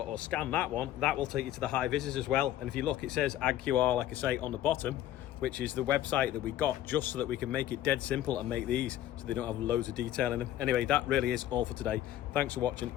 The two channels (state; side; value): quieter; right; 12.6 dB